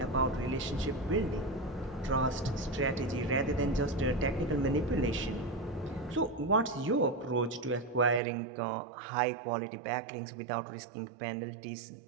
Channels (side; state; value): left; drops out; at 8.2 s